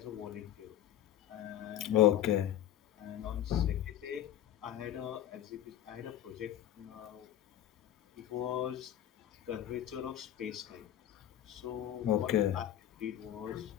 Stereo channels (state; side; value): quieter; right; 11.7 dB